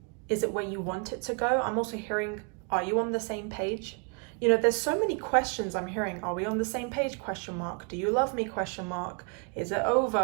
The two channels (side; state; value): left; quieter; 36.3 dB